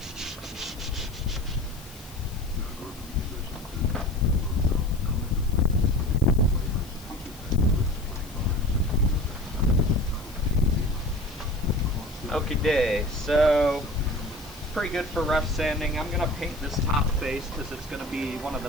Okay, so pretty good for rough sanding. I'm gonna paint this top face because it's gonna be one of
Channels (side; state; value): left; noise; hiss, 20 dB below the sound